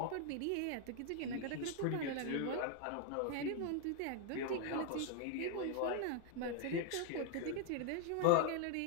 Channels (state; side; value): different; both; correlation 0.00